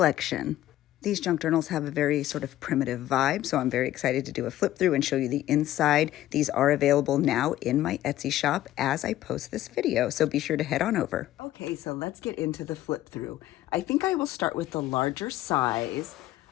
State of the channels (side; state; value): right; quieter; 14.1 dB